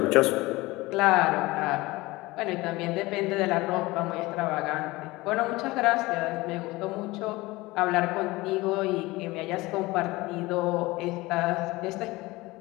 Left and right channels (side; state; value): right; quieter; 20.9 dB